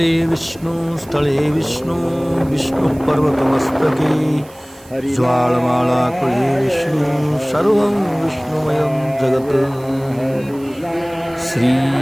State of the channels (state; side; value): noise; right; hiss, 25 dB below the sound